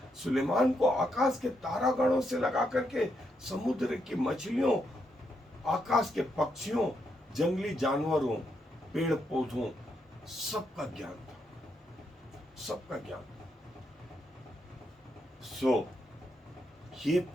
सुलेमान को आकाश के तारागणों से लगा करके समुद्र की मछलियों, आकाश के पक्षियों, जंगली जानवरों, पेड़ पौधों, सबका ज्ञान था, सबका ज्ञान। सो ये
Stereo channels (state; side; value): normal; both; correlation 0.80